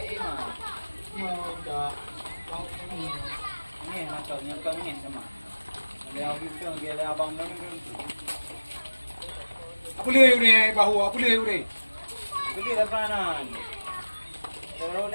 mah. Dah. Ni macamnya pengen sama. Dia kita dia abang mana tu. Apa le ni bahu apa le ni? Beli lapanan. Terus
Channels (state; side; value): inverted; both; correlation -1.00